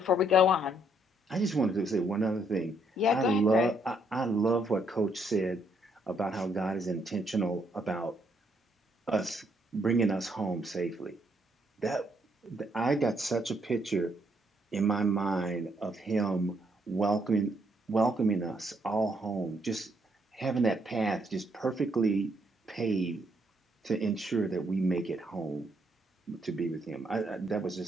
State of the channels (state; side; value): normal; both; correlation 0.72